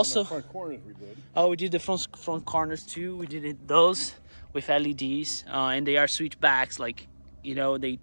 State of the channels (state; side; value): inverted; both; correlation -1.00